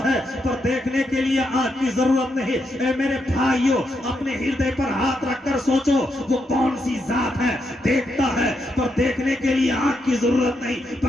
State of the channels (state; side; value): normal; both; correlation 0.81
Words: है पर देखने के लिए आंख की जरूरत नहीं। ए मेरे भाइयों, अपने हृदय पर हाथ रखकर सोचो वो कौन सी जात है? देखता है पर देखने के लिए आंख की जरूरत नहीं,